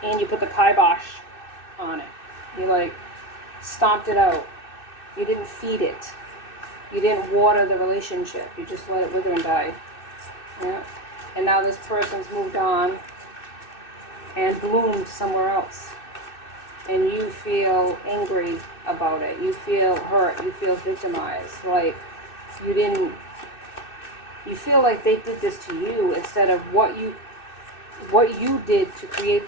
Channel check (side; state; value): right; late; 2.6 ms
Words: And you put the kibosh on it. You stomped it out. You didn't feed it. You didn't water the relationship. You just let it wither and die. Yeah. And now this person's moved on and bloomed somewhere else. And you feel angry about it. You feel hurt. You feel victimized. Like you feel like they did this to you instead of what you did to create